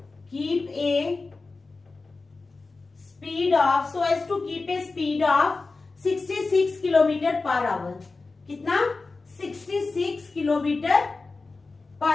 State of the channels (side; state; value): right; quieter; 3.8 dB